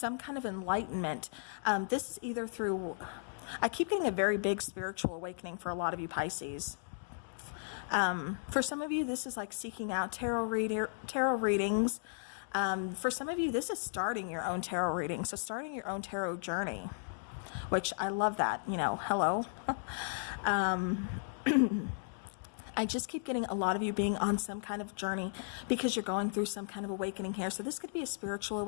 kind of enlightenment. This is either through, I keep getting a very big spiritual awakening for a lot of you Pisces. For some of you, this is like seeking out tarot readings. For some of you, this is starting your own tarot reading. So starting your own tarot journey, which I love that, hello. I just keep getting a lot of you being on some kind of journey because you're going through some kind of awakening here. So this could be a spiritual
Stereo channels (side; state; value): right; silent; digital silence